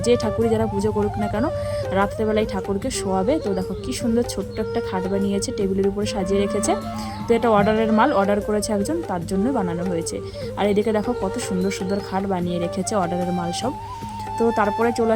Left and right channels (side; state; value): both; identical; correlation 1.00